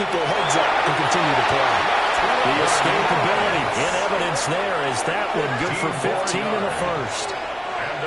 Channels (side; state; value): both; identical; correlation 1.00